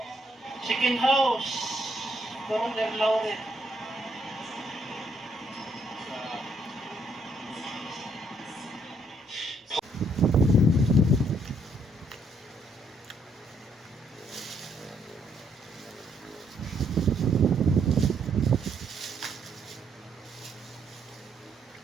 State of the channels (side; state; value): both; normal; correlation 0.71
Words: chicken house. Parang Lauren.